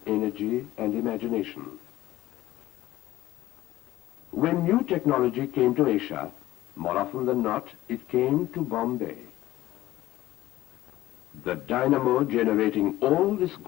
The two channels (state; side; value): quieter; right; 15.7 dB